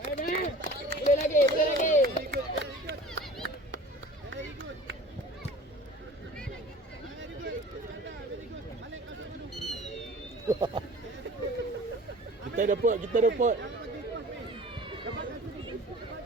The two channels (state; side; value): normal; both; correlation 0.43